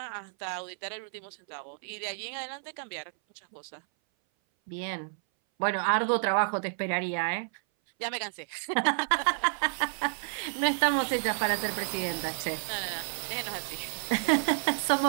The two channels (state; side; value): silent; left; 58 dB below the other